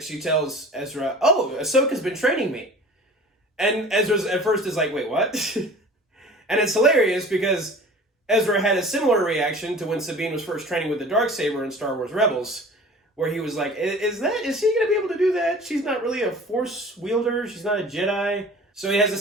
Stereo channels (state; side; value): normal; both; correlation 0.43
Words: she tells Ezra, oh, Ahsoka's been training me. And Ezra at first is like, wait, what? And it's hilarious because Ezra had a similar reaction to when Sabine was first training with the Darksaber in Star Wars Rebels, where he was like, is she going to be able to do that? She's not really a Force wielder. She's not a Jedi. So he has a